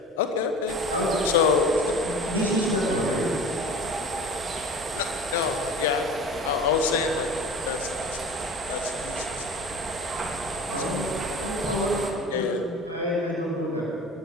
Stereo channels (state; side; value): normal; both; correlation 0.38